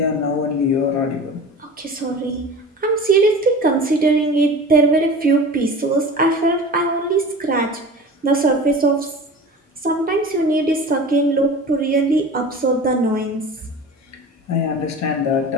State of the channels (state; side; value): normal; both; correlation 0.36